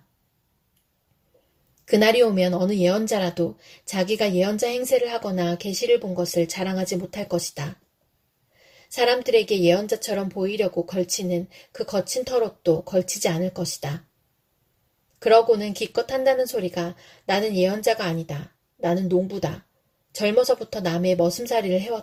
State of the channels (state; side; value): identical; both; correlation 1.00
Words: 그날이 오면 어느 예언자라도 자기가 예언자 행세를 하거나 계시를 본 것을 자랑하지 못할 것이다. 사람들에게 예언자처럼 보이려고 걸치는 그 거친 털옷도 걸치지 않을 것이다. 그러고는 기껏 한다는 소리가 나는 예언자가 아니다. 나는 농부다. 젊어서부터 남의 머슴살이를